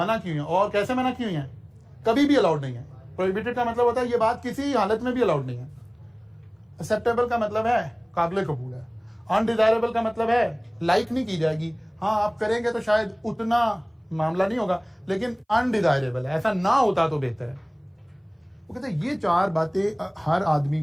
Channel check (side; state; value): both; identical; correlation 1.00